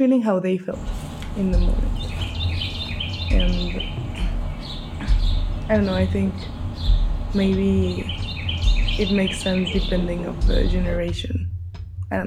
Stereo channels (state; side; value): identical; both; correlation 1.00